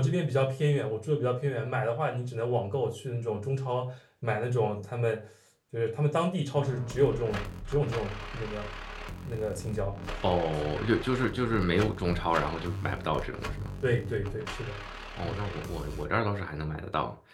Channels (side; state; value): both; identical; correlation 1.00